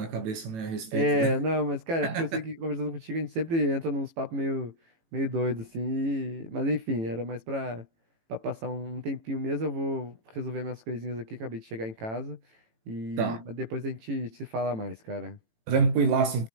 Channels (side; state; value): left; late; 18 ms